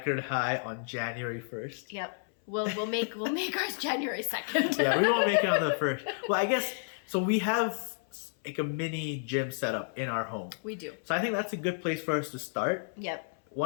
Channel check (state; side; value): silent; right; 57 dB below the other